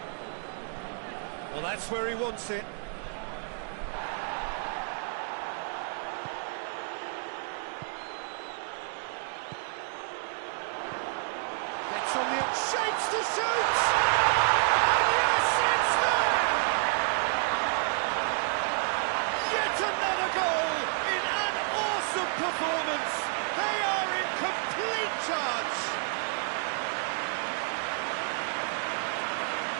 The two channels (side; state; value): left; silent; 58 dB below the other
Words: Well, that's where he wants it. Gets on the shapes to shoot! And yes, it's there! Yet another goal in an awesome performance. They are in complete charge.